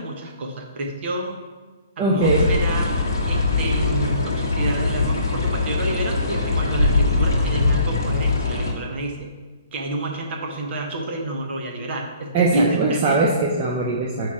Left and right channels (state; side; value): inverted; both; correlation -0.54